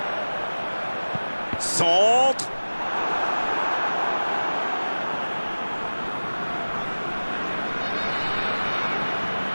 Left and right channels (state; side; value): inverted; both; correlation -1.00